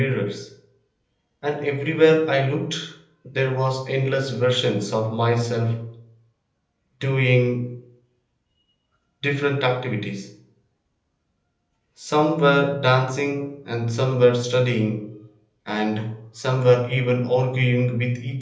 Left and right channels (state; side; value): identical; both; correlation 1.00